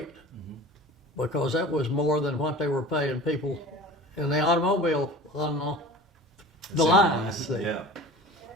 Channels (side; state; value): both; normal; correlation 0.39